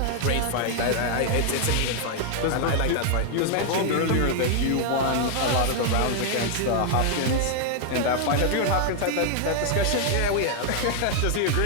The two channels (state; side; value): different; both; correlation 0.00